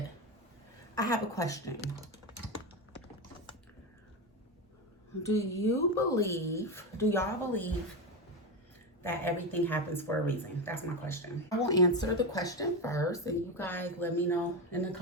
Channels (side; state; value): both; normal; correlation 0.15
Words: I have a question. Do y'all believe that everything happens for a reason? That's my question. I will answer the question first, and you guys let me know in the